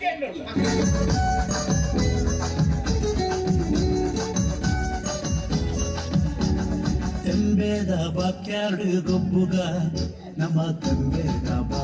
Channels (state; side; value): identical; both; correlation 1.00